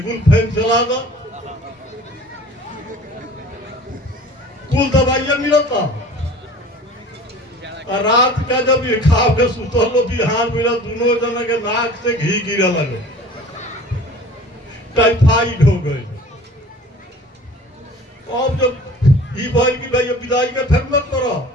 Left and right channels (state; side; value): normal; both; correlation 0.45